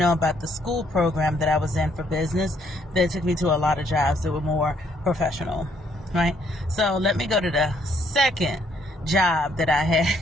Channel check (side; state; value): both; normal; correlation 0.69